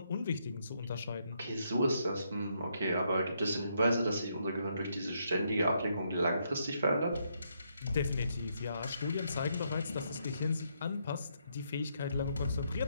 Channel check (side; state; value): both; inverted; correlation -0.76